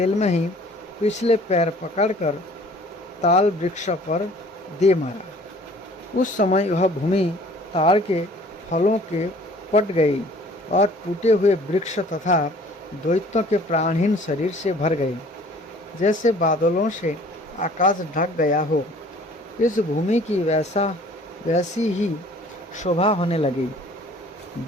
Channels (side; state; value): both; normal; correlation 0.52